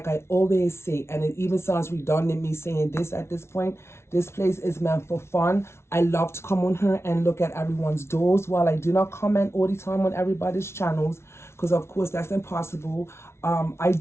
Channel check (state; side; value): late; right; 0.13 ms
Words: I always say, and it even sounds redundant me saying this at this point, this place is meant for fun. I love to come on here and look at everyone's dolls. While I do not comment all the time on everybody's channels, because of course that's impossible, I